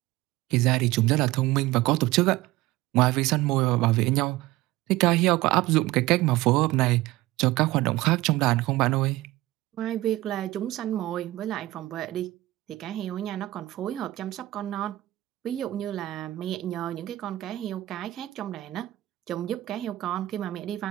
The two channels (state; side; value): quieter; left; 17.6 dB